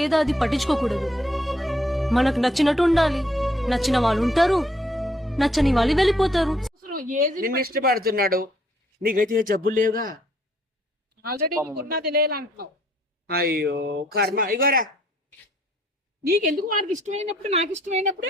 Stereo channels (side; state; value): both; normal; correlation 0.66